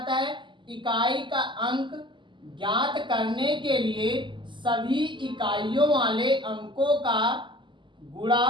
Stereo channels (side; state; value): left; late; 0.24 ms